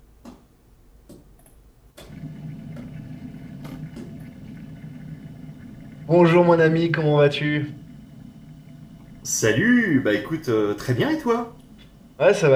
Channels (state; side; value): identical; both; correlation 1.00